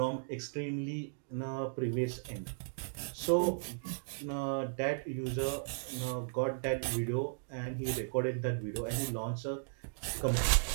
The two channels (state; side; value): silent; left; digital silence